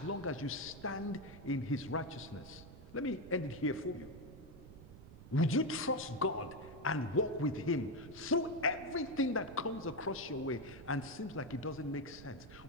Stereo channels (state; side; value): noise; right; rumble, 16 dB below the sound